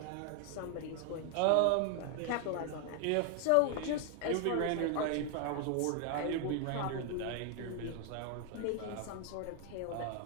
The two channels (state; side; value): different; both; correlation 0.00